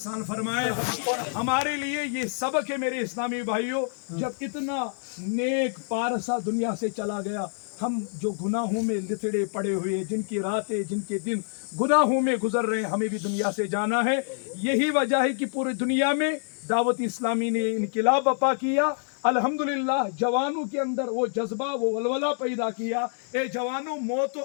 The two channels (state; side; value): silent; right; 60 dB below the other